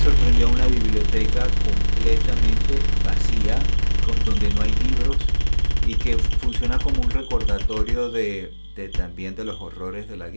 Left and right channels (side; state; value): both; inverted; correlation -1.00